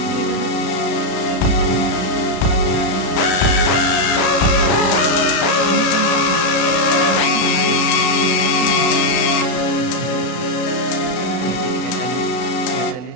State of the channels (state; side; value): late; right; 33 ms